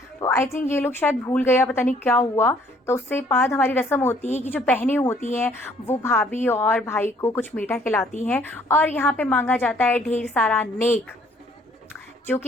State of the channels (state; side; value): normal; both; correlation 0.61